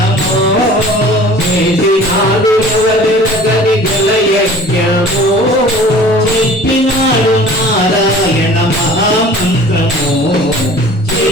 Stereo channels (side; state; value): both; normal; correlation 0.46